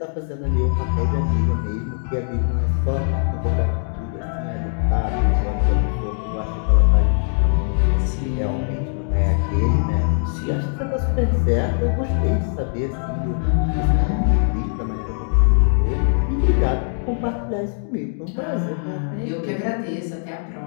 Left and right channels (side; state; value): right; silent; digital silence